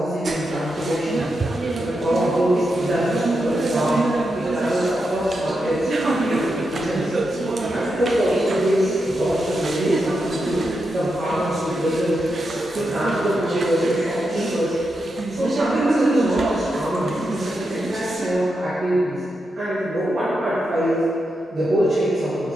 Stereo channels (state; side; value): normal; both; correlation 0.86